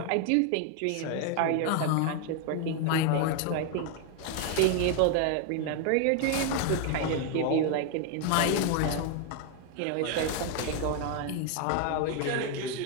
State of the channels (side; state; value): both; different; correlation 0.01